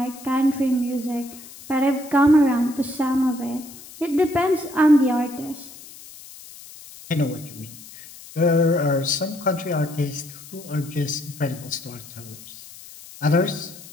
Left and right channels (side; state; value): left; noise; hiss, 18 dB below the sound